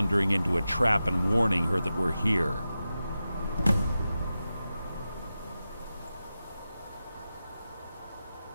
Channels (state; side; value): inverted; both; correlation -0.92